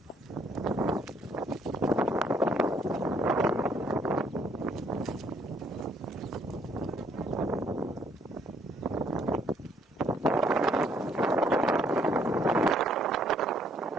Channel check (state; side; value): normal; both; correlation 0.67